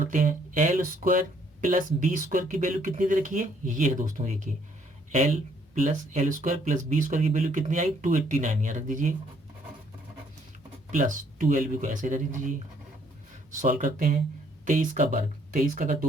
हैं, L square plus B square की वैल्यू कितनी दे रखी है, ये है दोस्तों, देखिए L plus L square plus B square की वैल्यू कितनी आई, 289, यहाँ रख दीजिए, प्लस 2LB को ऐसे रख दीजिए। सॉल्व करते हैं, 23 का वर्ग, 23 का अगर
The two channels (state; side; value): normal; both; correlation 0.66